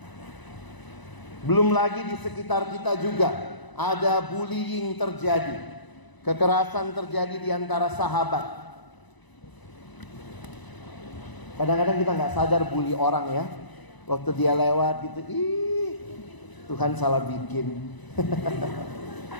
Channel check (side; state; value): right; late; 1.0 ms